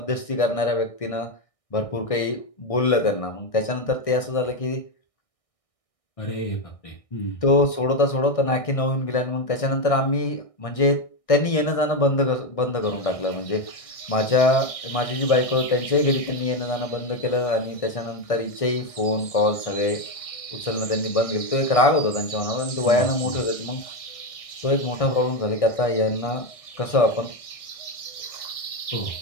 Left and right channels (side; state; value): right; late; 1.6 ms